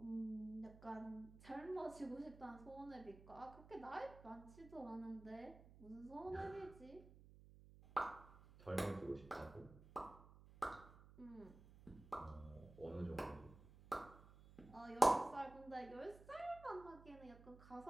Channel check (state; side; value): noise; right; hum, 18 dB below the sound